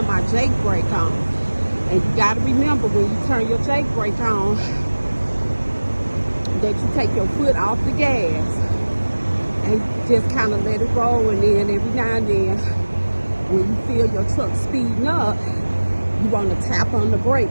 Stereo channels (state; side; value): inverted; both; correlation -1.00